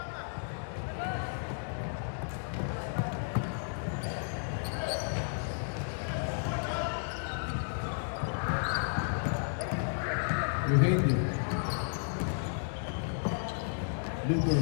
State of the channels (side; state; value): right; silent; digital silence